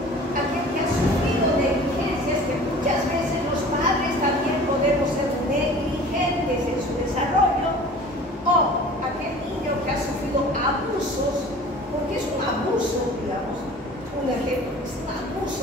aquel que ha sufrido negligencias, que muchas veces los padres también podemos ser negligentes en su desarrollo, o aquel niño que ha sufrido abusos, porque es un abuso, digamos, un ejemplo, es un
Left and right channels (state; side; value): normal; both; correlation 0.44